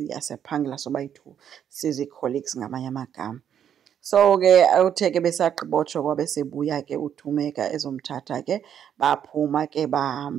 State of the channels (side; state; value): left; quieter; 9.1 dB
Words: sobayi-2, sizi-colleagues ngamanye amagama. So ke uthe ke besagqibotsho kwabe sebuya ke uThumeka ezomthatha ke baphuma ke